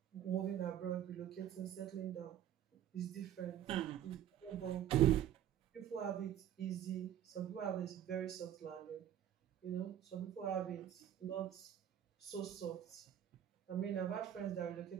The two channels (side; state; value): left; quieter; 10.7 dB